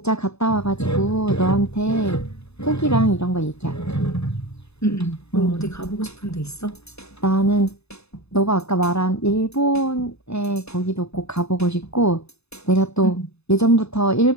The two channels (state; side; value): late; right; 0.79 ms